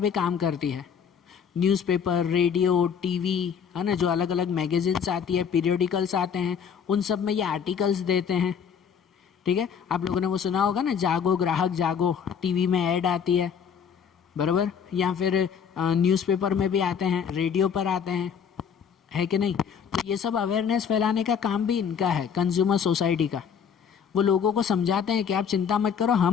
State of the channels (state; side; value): quieter; right; 7.3 dB